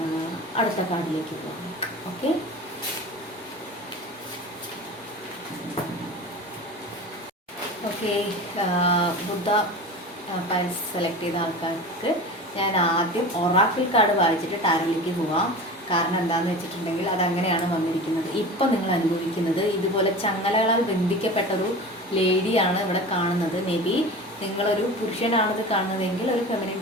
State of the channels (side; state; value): both; normal; correlation 0.33